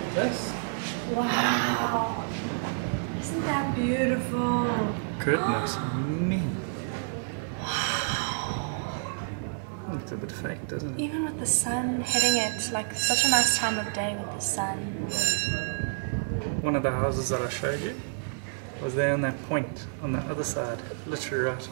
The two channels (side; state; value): left; silent; digital silence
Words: this. Wow! Isn't that beautiful? Goodness me. Wow! Look at a bit fake, doesn't it? Even with the sun hitting it, like such a nice time of day with the sun. One of the houses that I showed you was there on that point on the other side, literally right